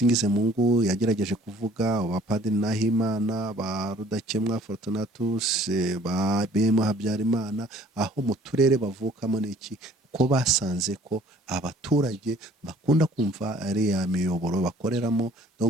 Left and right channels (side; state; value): both; normal; correlation 0.55